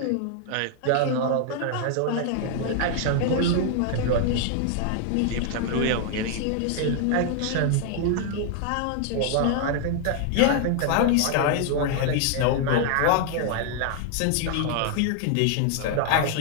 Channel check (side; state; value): both; different; correlation 0.00